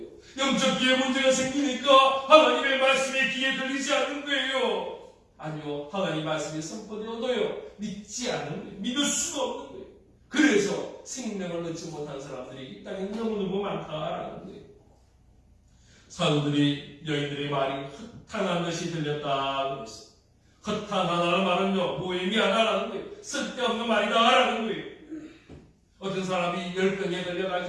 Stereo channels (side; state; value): both; identical; correlation 1.00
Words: 영적 귀에 문제가 생기니까 하나님의 말씀이 귀에 들리지 않는 거예요. 아니요, 하나님 말씀이 선포되어도요 믿지 않는 거예요. 믿을 수가 없는 거예요. 그래서 생명을 얻지 못한 사람들이 이 땅에 너무너무 많다라는 거예요. 사도들이 여인들의 말이 헛탄한 듯이 들렸다 그랬어요. 헛탄하다는 말은요 무의미하다라는 거예요. 쓸데없는 말이다라는 거예요. 어떤 사람이 열병에